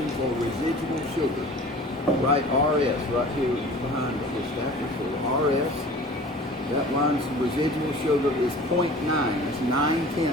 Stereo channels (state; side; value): normal; both; correlation 0.43